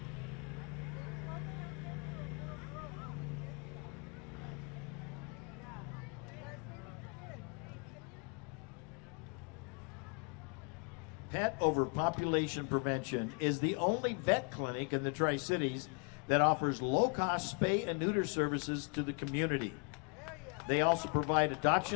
Pet Overpopulation Prevention is the only vet clinic in the Tri-Cities that offers low-cost spay and neuter services to the community. They also provide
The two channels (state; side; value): quieter; right; 36.8 dB